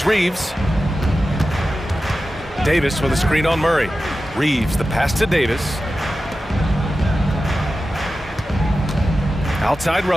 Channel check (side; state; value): both; normal; correlation 0.93